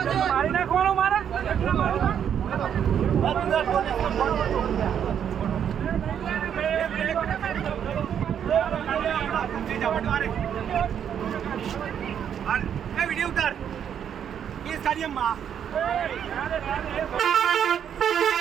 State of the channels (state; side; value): quieter; left; 8.7 dB